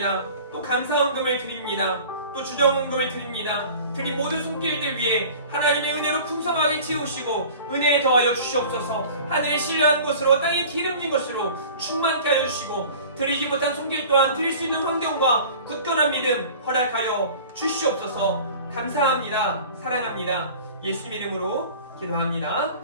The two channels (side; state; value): both; inverted; correlation -0.43